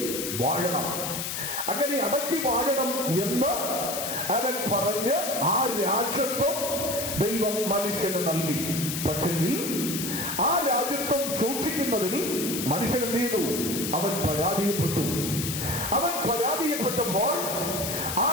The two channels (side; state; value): left; noise; hiss, 4 dB below the sound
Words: വാഴണം. അങ്ങനെ അടക്കി വാഴണം എന്ന് അവൻ പറഞ്ഞ് ആ രാജ്യത്വം ദൈവം മനുഷ്യന് നൽകി. പക്ഷെങ്കിൽ ആ രാജ്യത്വം സൂക്ഷിക്കുന്നതിൽ മനുഷ്യൻ എന്ത് ചെയ്തു? അവൻ പരാജയപ്പെട്ടു. അവൻ പരാജയപ്പെട്ടപ്പോൾ ആ